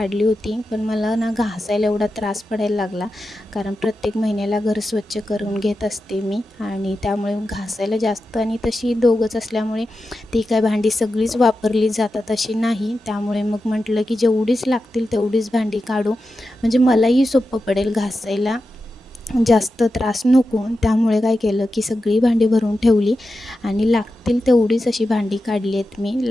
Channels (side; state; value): both; normal; correlation 0.91